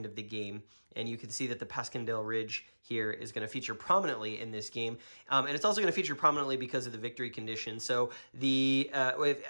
of the game. And you can see that the Passchendaele Ridge here is going to feature prominently in this game. And it's also going to feature prominently because of the victory condition. So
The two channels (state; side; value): inverted; both; correlation -1.00